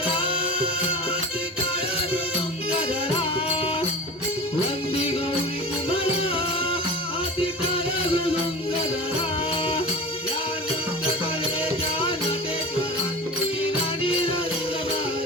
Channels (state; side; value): normal; both; correlation 0.33